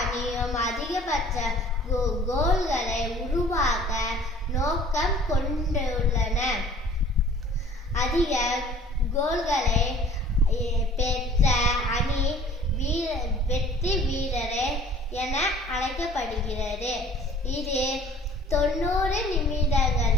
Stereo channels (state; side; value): normal; both; correlation 0.50